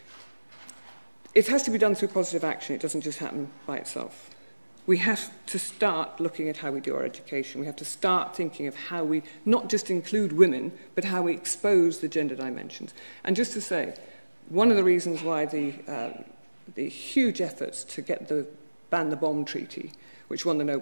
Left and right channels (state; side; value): inverted; both; correlation -1.00